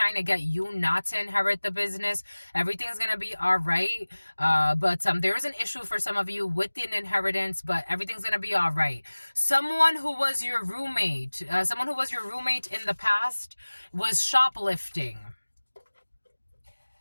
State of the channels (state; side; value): inverted; both; correlation -1.00